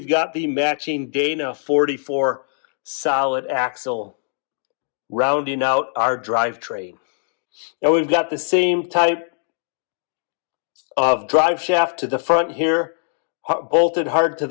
got the matching Dana 44 solid axle rounding out our drivetrain. And we've got the same type of drive shaft to the front here, bolted hard to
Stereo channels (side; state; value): right; silent; digital silence